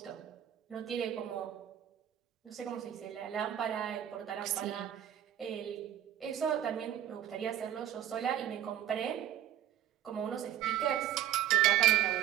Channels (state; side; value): quieter; left; 11.3 dB